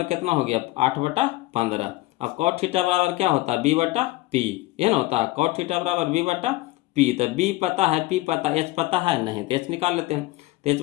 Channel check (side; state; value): right; quieter; 18.6 dB